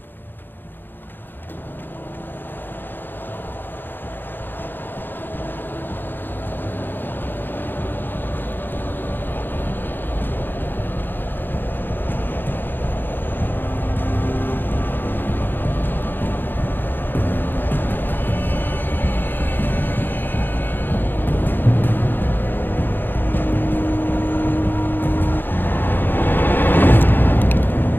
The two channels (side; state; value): right; late; 0.095 ms